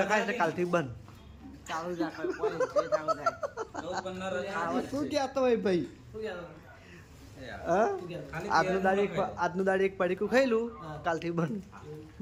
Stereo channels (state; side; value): identical; both; correlation 1.00